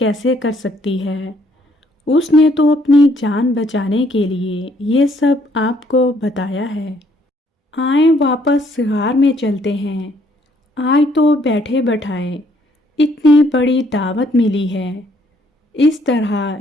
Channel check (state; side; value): normal; both; correlation 0.67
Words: کر سکتی ہے؟ اس نے تو اپنی جان بچانے کے لیے یہ سب آپ کو بتایا ہے۔ آئیں واپس غار میں چلتے ہیں۔ آج تو بیٹھے بٹھائے اتنی بڑی دعوت ملی ہے۔ اس طرح